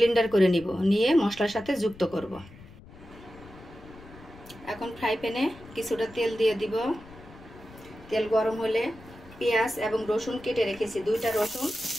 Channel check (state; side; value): noise; left; rumble, 20 dB below the sound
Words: করে নিব, নিয়ে মশলার সাথে যুক্ত করব। এখন ফ্রাই প্যানে কিছুটা তেল দিয়ে দিব। তেল গরম হলে পেঁয়াজ এবং রসুন কেটে রেখেছি, 2টা রসুন